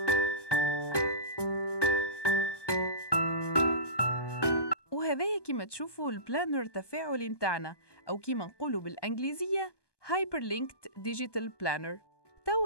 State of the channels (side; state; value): right; late; 1.2 ms